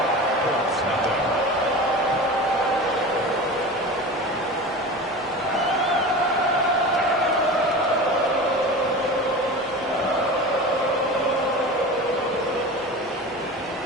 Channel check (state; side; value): normal; both; correlation 0.31